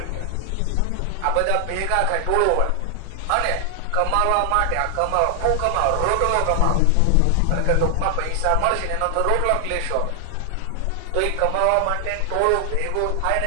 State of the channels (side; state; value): both; different; correlation 0.00